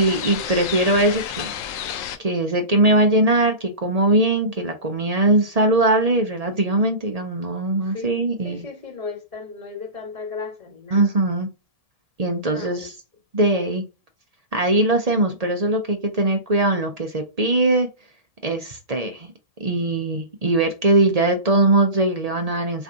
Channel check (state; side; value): late; left; 1.8 ms